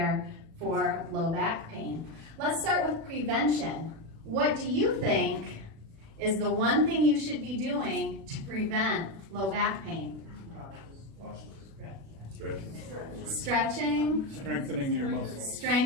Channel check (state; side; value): late; left; 36 ms